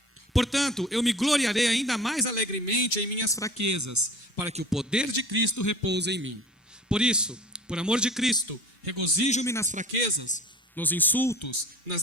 Portanto, eu me gloriarei ainda mais alegremente em minhas fraquezas, para que o poder de Cristo repouse em mim. Por isso, por amor de Cristo, regozijo-me nas fraquezas, nos insultos, nas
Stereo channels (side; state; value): both; normal; correlation 0.42